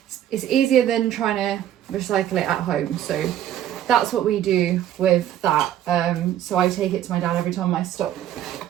it's easier than trying to recycle it at home. So that's what we do with that. So I take it to my dad every time my stock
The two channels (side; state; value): left; quieter; 11.3 dB